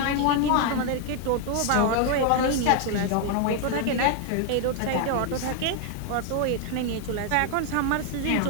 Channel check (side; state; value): both; different; correlation 0.00